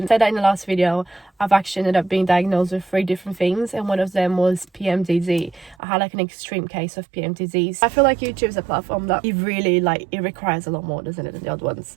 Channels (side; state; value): left; drops out; at 5.8 s